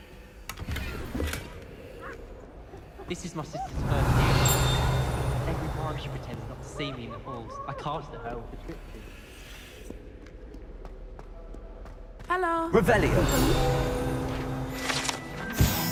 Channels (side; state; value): both; identical; correlation 1.00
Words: This is my sister's first year. Every time she pretends not to see me in the halls, I cast at her with the trip. Hello. Revelio.